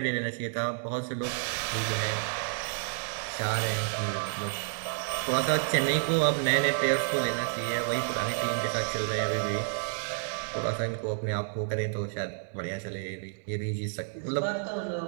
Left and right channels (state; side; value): silent; left; 58 dB below the other